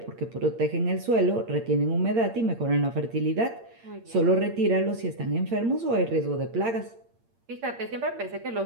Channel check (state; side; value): late; left; 8.7 ms